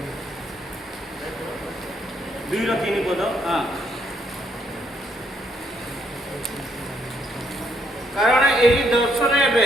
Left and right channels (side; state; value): both; normal; correlation 0.72